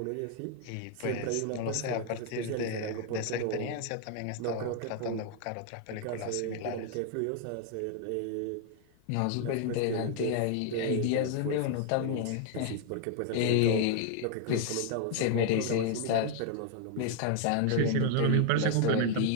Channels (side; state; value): both; different; correlation 0.00